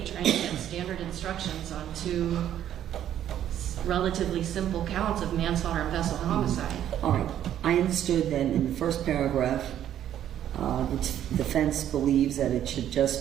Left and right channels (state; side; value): quieter; left; 10.9 dB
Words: trying to get standard instructions on two relatively simple counts of manslaughter and vessel homicide. All right, I understood then in the first paragraph, the defense believes that it should